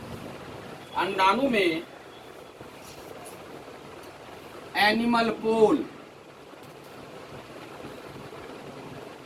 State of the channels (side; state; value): both; identical; correlation 1.00